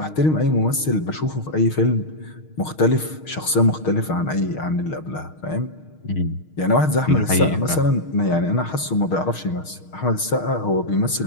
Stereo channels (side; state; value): right; late; 6.5 ms